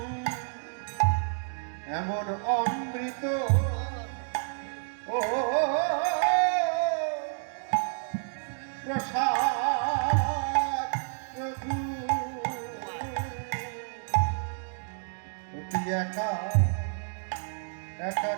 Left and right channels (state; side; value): silent; left; digital silence